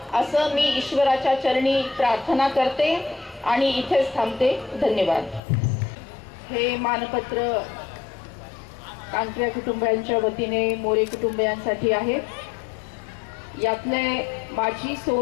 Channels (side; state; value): right; drops out; at 5.4 s